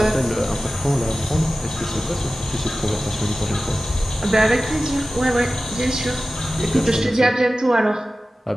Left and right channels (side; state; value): both; normal; correlation 0.95